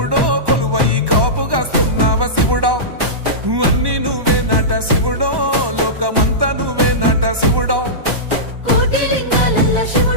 కొలువై కాపుగాస్తున్నావ శివుడో అన్ని నువ్వే నట శివుడో లోకమంతా నువ్వే నట శివుడో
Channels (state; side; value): late; left; 1.1 ms